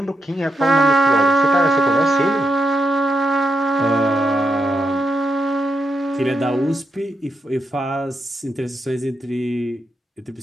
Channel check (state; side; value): normal; both; correlation 0.83